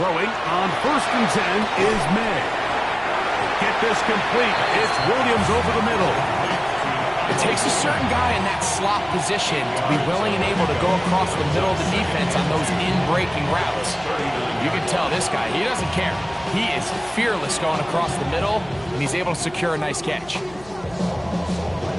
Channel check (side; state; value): left; noise; hum, 23 dB below the sound